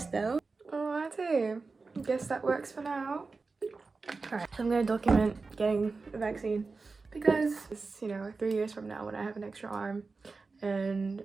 though. Alrighty. Guess that works for now. Alright, so I'm gonna document getting a vaccine because it's, you know, 3 years from now when I have an extra arm and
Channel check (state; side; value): quieter; left; 4.1 dB